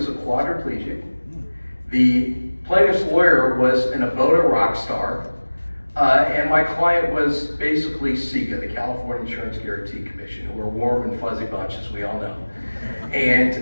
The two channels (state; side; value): inverted; both; correlation -1.00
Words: a quadriplegic. The plaintiff's lawyer was an Ebola rock star. And my client was basically CIGA, the California Insurance Guarantee Commission, who are a warm and fuzzy bunch, as we all know. And